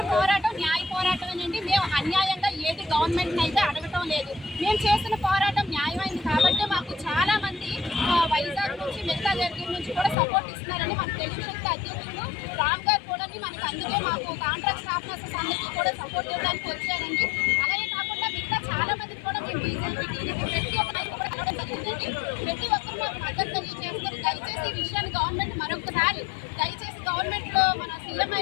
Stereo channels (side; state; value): right; drops out; at 10.2 s